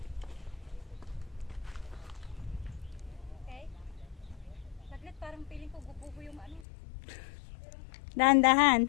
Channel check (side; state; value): right; drops out; at 6.7 s